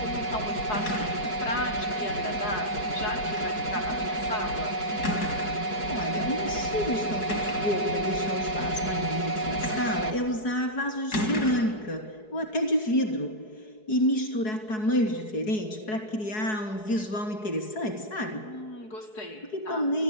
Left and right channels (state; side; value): late; right; 4.7 ms